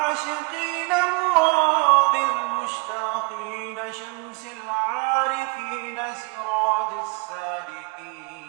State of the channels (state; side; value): quieter; left; 30.1 dB